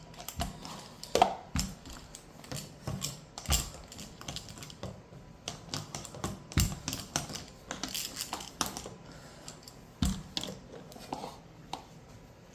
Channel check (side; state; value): both; identical; correlation 1.00